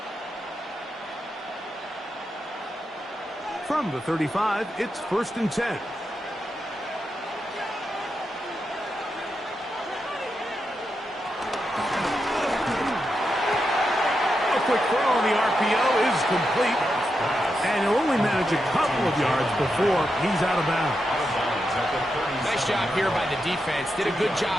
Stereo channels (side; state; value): both; normal; correlation 0.86